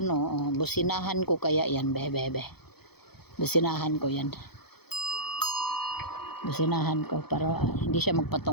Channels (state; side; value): late; right; 0.97 ms